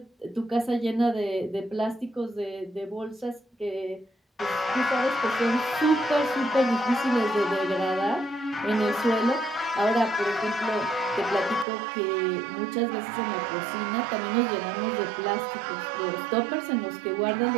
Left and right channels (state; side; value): drops out; left; at 11.7 s